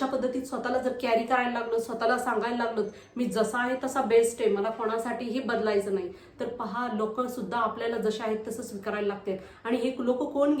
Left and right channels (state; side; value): identical; both; correlation 1.00